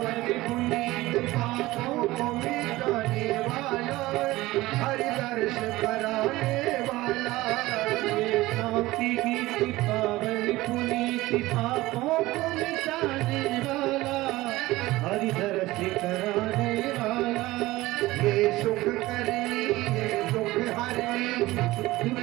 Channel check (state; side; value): quieter; left; 18.5 dB